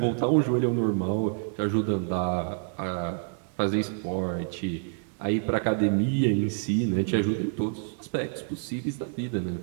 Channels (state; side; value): silent; left; digital silence